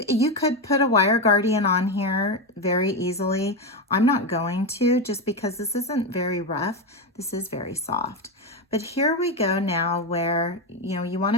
could put a wire guardian on here very easily. I'm not going to, just because this isn't very rough. This is very soft. But here we go now where, you want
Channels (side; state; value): both; normal; correlation 0.12